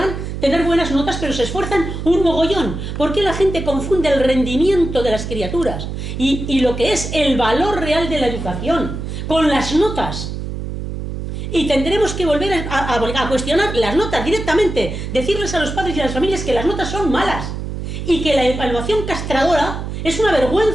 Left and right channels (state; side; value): noise; right; hum, 6 dB below the sound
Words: tener buenas notas, pero se esfuerzan un mogollón? ¿Por qué la gente confunde el rendimiento de las criaturas y lo que es el valor real de la educación con las notas? Y tendremos que volver a cuestionar las notas directamente, decirles a los padres y a las familias que las notas son malas y que la evaluación castradora Es una